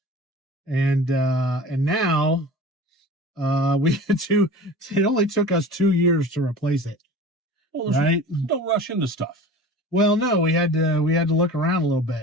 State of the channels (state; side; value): normal; both; correlation 0.38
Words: And now we had to. It only took us 2 years to replace it. Well, right? Don't rush into stuff. Well, no, we had to look around a little